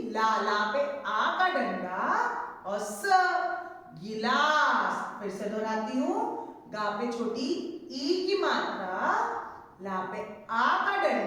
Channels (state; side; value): identical; both; correlation 1.00